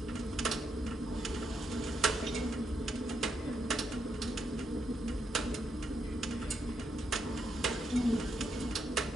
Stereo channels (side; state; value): both; normal; correlation 0.80